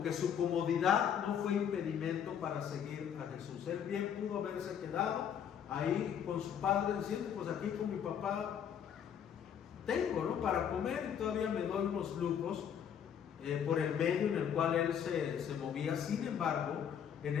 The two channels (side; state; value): right; quieter; 8.4 dB